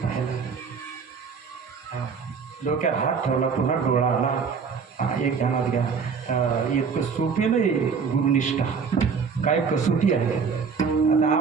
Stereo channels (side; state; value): left; quieter; 5.8 dB